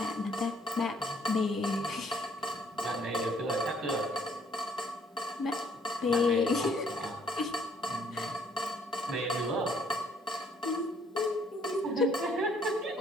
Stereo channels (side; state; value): both; normal; correlation 0.64